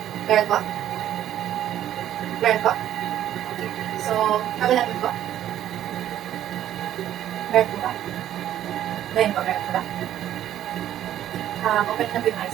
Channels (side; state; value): left; quieter; 11.7 dB